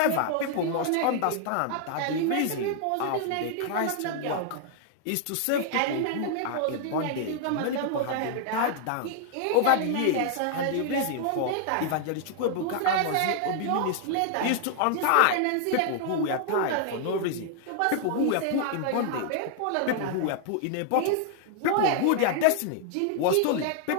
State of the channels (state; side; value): different; both; correlation 0.00